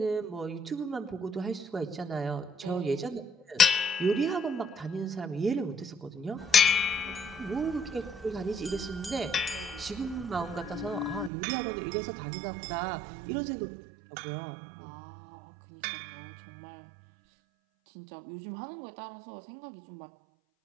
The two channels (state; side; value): drops out; left; at 11.3 s